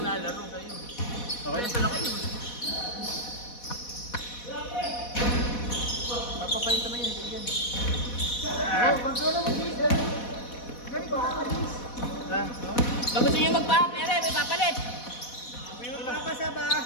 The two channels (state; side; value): late; right; 4.1 ms